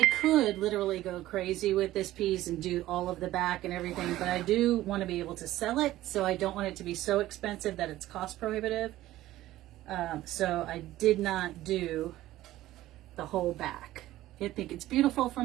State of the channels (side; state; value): left; quieter; 15.3 dB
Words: could literally go crazy with this piece and do all of the back and everything, but I do want to be able to sell it, so I don't want it to be so expensive that it's cost prohibitive. So I did not do the whole back. I think it's beautiful